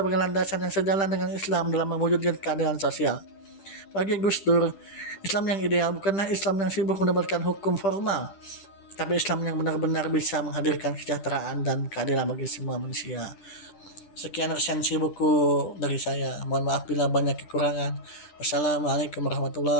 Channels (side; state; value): right; late; 10 ms